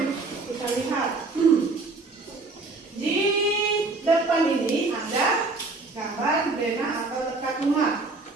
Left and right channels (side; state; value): left; quieter; 3.6 dB